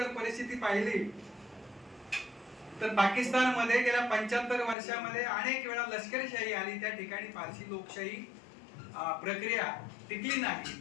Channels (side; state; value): right; drops out; at 4.8 s